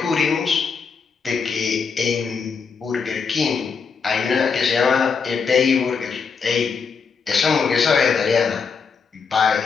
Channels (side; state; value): right; quieter; 5.6 dB